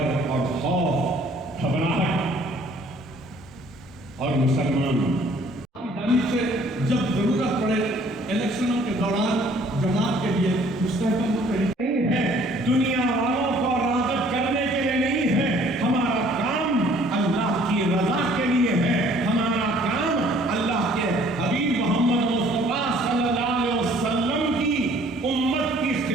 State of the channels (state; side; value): normal; both; correlation 0.57